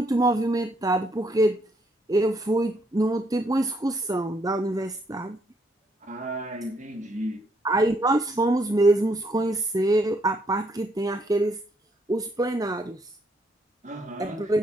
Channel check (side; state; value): both; normal; correlation 0.72